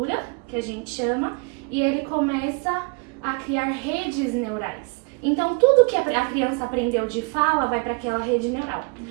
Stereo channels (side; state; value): left; quieter; 33.0 dB